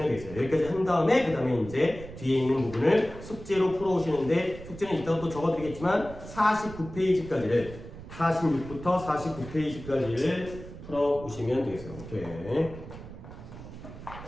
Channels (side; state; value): right; noise; rumble, 14 dB below the sound